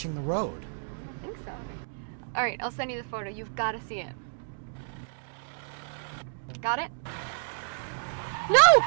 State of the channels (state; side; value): silent; left; digital silence